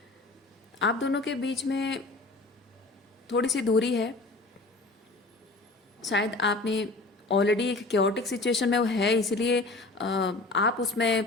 आप दोनों के बीच में थोड़ी सी दूरी है, शायद आपने ऑलरेडी एक क्योटिक सिचुएशन में वो है, इसलिए आप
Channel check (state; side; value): quieter; right; 3.1 dB